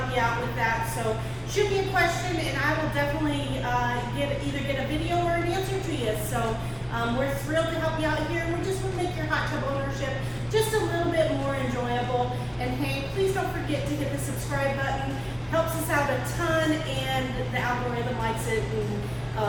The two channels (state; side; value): identical; both; correlation 1.00